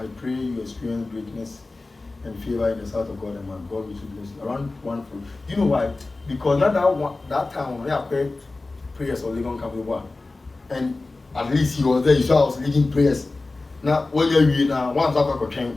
pray you experience greatness and favor in the sight of God and man. God will bless you. Around 1 4. You know why? Because that time when I prayed prayers or living come with and at least he was there. You saw I was leading prayers. Now when you're now once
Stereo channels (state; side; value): quieter; right; 3.3 dB